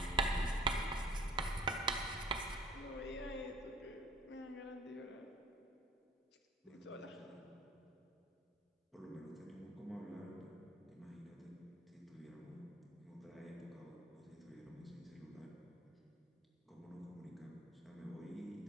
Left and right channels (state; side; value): normal; both; correlation 0.49